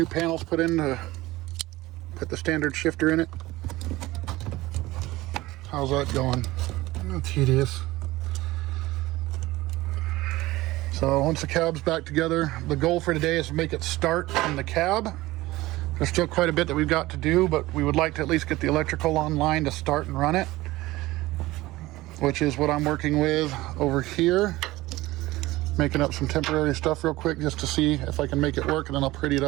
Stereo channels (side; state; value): left; quieter; 18.5 dB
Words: panels put in to put the standard shifter in it. How's that going? Tedious. So once the cab's back together, the goal for today is to make it start in the cab. There's still quite a bit that we've got to do, but we would like to at least get the electrical online to start and run it, which is what I'm working with over here. Making up some temporary stuff real quick just to see if I can make it work, and then I'll pretty it